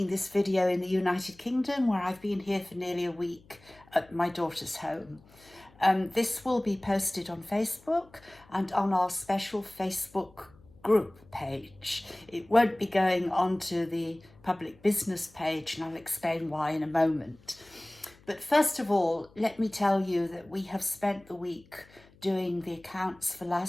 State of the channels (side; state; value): left; noise; hum, 27 dB below the sound